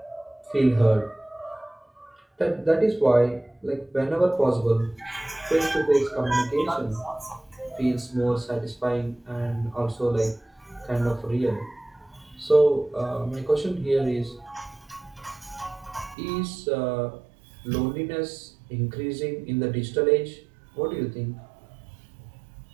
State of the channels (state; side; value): drops out; left; at 16.2 s